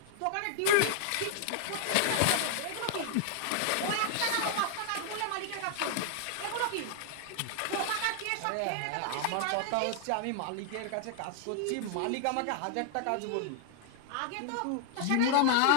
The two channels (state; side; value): different; both; correlation 0.00